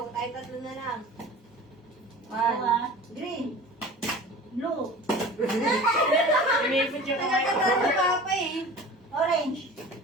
Tayo tatlo na lang. Dalawa. Green. Blue. Umipot yung kamay ko. Si Papa eh. Orange.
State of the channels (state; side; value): normal; both; correlation 0.39